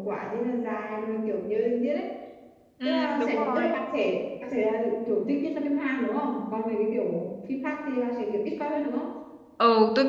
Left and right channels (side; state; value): both; identical; correlation 1.00